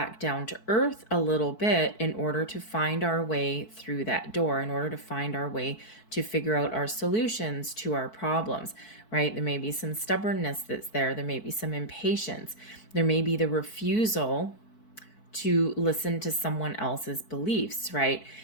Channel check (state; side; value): late; right; 4.6 ms